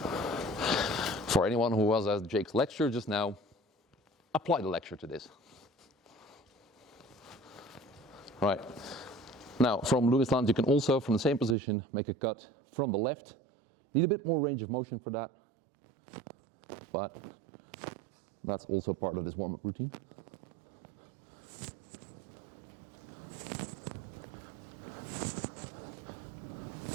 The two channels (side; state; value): left; drops out; at 11.6 s